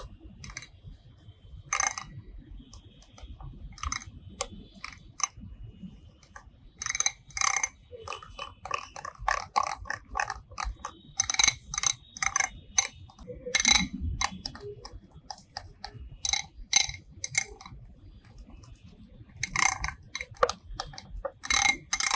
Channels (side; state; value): both; identical; correlation 1.00